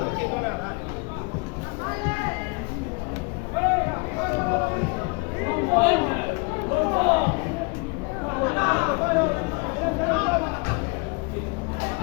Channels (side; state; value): right; quieter; 30.7 dB